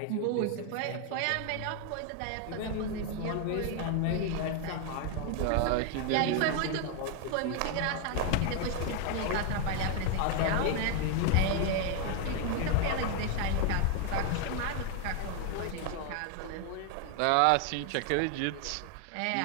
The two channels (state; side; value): different; both; correlation 0.01